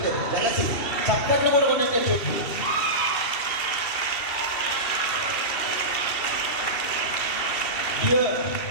చప్పట్లు కూడా కొట్టే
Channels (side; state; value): right; late; 2.7 ms